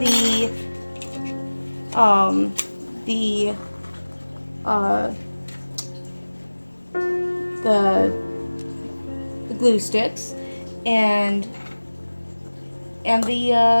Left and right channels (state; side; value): inverted; both; correlation -1.00